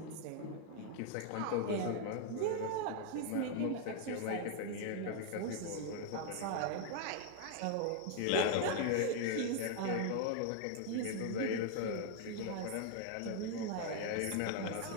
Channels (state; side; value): different; both; correlation 0.00